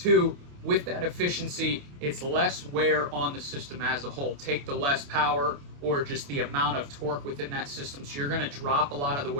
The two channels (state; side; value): late; left; 28 ms